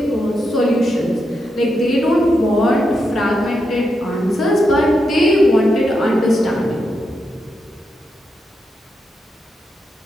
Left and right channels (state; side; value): normal; both; correlation 0.84